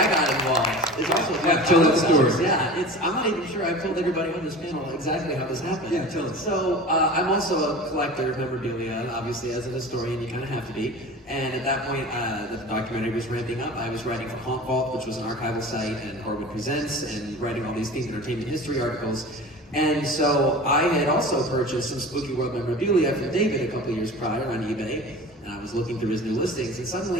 got involved is also tell that story. Yeah, I'm not even sure I've told everybody on this panel exactly how this happened. Yeah, tell us. So I'm also a collector of memorabilia, and obviously as a historian, you kind of have to be. And at that point, the documentary was ramping up. I was writing for Haunt Vault, which was an archival site, and Horwood Presents, and writing all these themed entertainment history articles. And so I had also purchased some SpookyWorld memorabilia from David a couple years prior on eBay. And I was looking through his new listings, and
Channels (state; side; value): normal; both; correlation 0.36